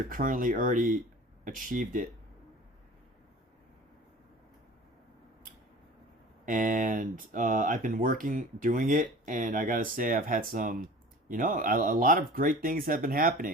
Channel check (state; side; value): normal; both; correlation 0.41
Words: achieved it. And I've been doing it, and I gotta say I've had some, you know, a lot of great things have been